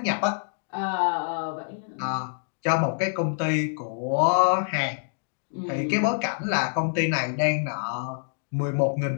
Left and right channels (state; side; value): silent; right; digital silence